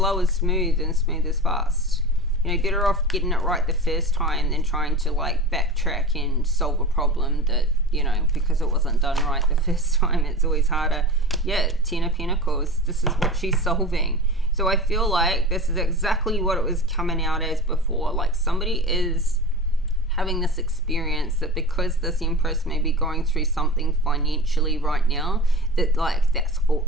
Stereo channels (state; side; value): normal; both; correlation 0.31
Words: is smooth and smooth is fast. You know, better off getting it right the first time than trying to like backtrack and solve a problem that, you know, because it wasn't done right the first time, it's always harder. Yeah, Ten of Pentacles, this is what she's solving. So I feel like this is exactly what it was coming out as before. Like somebody has having this experience that because this Empress may be going through something financially right now, that like that's all,